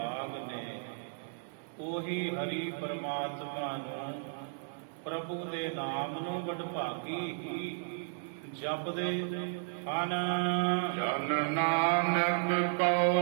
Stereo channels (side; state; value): left; silent; digital silence